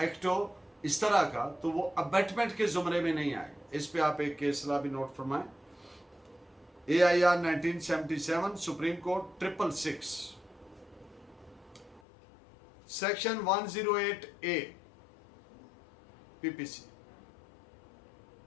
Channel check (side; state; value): right; drops out; at 12.0 s